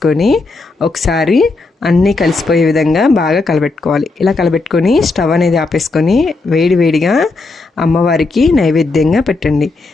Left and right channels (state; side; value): quieter; right; 3.6 dB